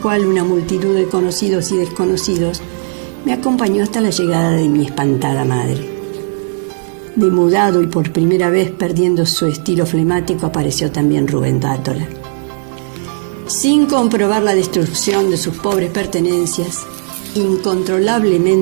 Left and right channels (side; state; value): left; silent; digital silence